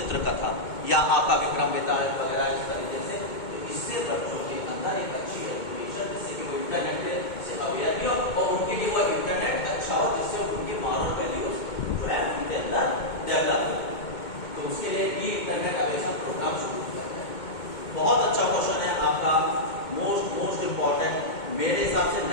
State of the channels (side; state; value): right; late; 2.2 ms